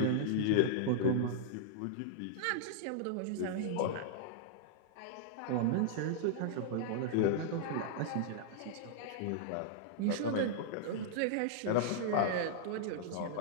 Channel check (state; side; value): different; both; correlation -0.01